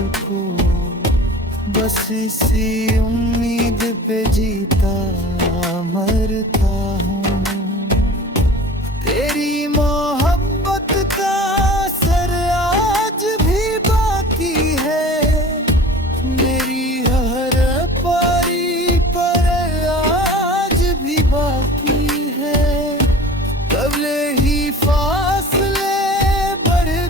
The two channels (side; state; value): both; normal; correlation 0.41